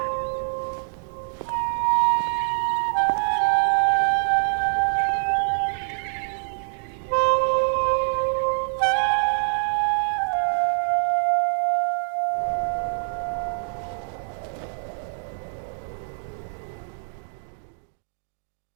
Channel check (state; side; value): silent; left; digital silence